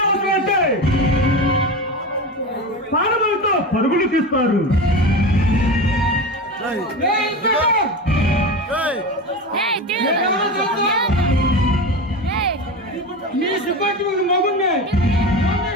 అంటే ప్రాణములతో పరుగులు తీస్తారు. మీ డిపార్ట్మెంట్ మగుండే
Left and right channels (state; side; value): normal; both; correlation 0.25